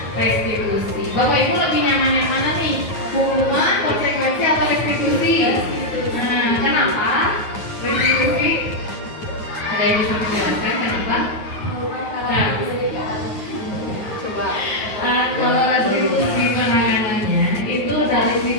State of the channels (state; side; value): late; right; 9.4 ms